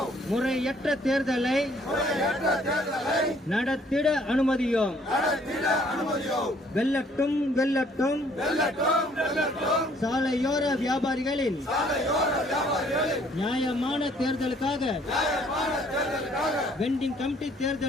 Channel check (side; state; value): both; normal; correlation 0.61